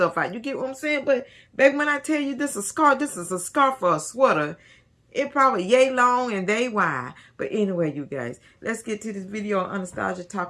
out. You get what I'm saying? But back when I tell you this is a scarf, this is a scarf for a sweater. It probably yay long and they wide. But anyway, you guys, let's get to this video on Anastasia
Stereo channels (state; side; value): identical; both; correlation 1.00